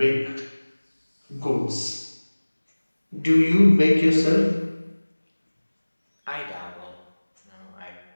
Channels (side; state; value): both; inverted; correlation -1.00